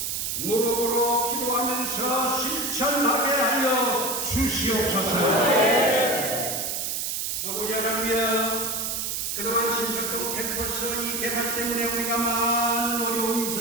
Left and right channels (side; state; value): right; noise; hiss, 2 dB below the sound